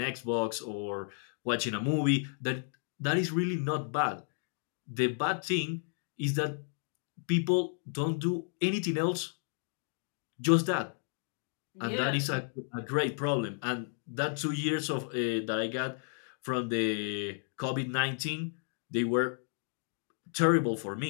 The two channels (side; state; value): right; silent; 56 dB below the other